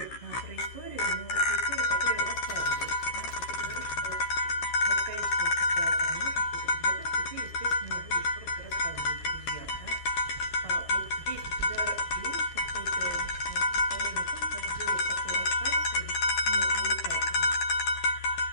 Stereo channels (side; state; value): right; late; 12 ms